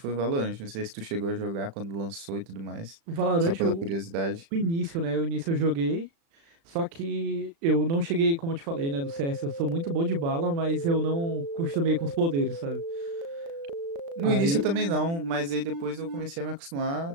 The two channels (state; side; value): late; left; 36 ms